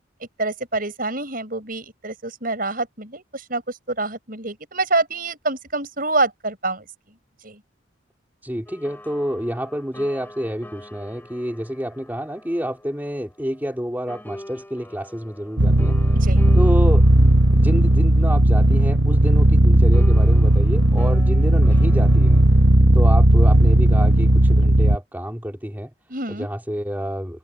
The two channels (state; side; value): normal; both; correlation 0.84